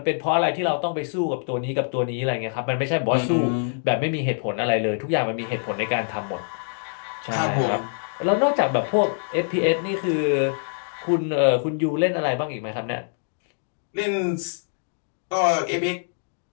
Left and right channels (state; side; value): silent; right; 62 dB below the other